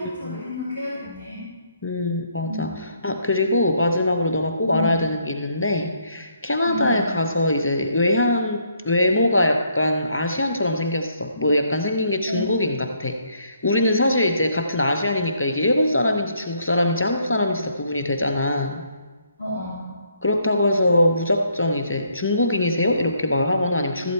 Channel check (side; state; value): both; inverted; correlation -0.69